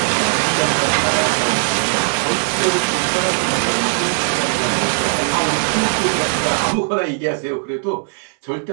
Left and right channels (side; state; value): left; silent; digital silence